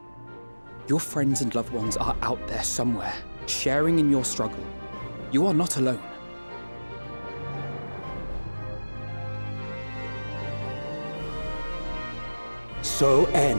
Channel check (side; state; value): both; inverted; correlation -1.00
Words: Your friends and loved ones are out there somewhere, sharing in your struggle. You are not alone. So